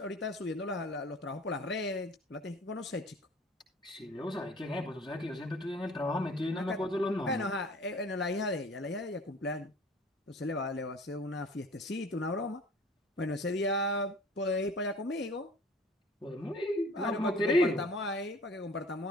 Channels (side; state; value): both; normal; correlation 0.47